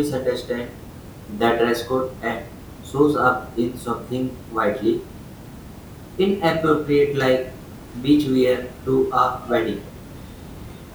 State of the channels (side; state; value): both; identical; correlation 1.00